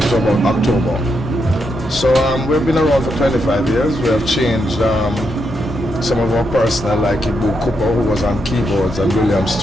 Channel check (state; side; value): normal; both; correlation 0.81